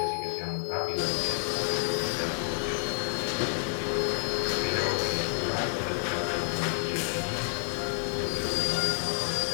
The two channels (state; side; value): silent; right; 57 dB below the other